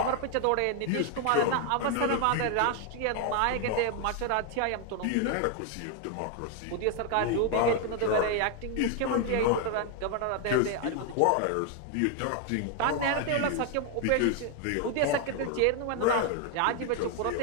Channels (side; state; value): both; different; correlation 0.01